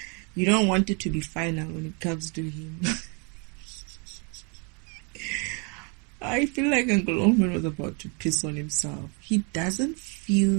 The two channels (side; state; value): left; quieter; 34.2 dB